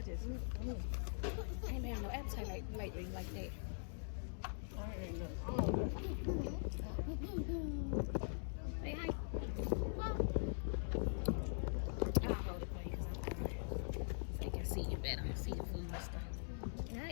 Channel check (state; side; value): silent; right; digital silence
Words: just I ain't been having no appetite lately like that. I ain't no. Say hi. I'll hold it for you so you can see you better. See your food and stuff. Yeah, I